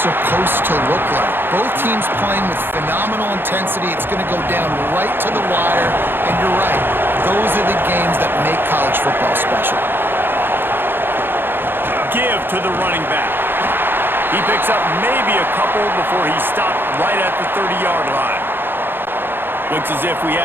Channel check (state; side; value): late; left; 0.10 ms